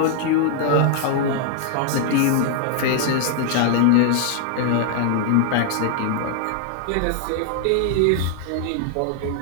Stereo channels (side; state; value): both; different; correlation 0.00